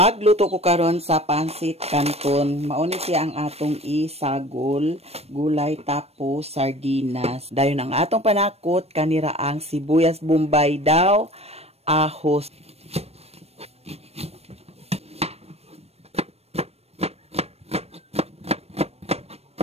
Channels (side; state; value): left; late; 0.30 ms